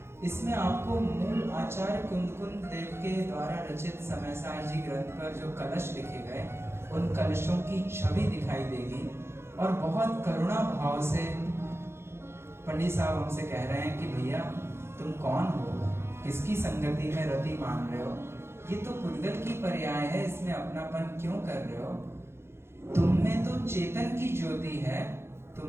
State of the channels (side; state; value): left; late; 0.12 ms